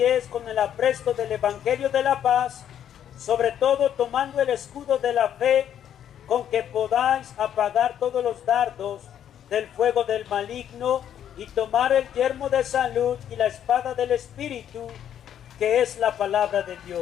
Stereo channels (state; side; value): quieter; right; 9.9 dB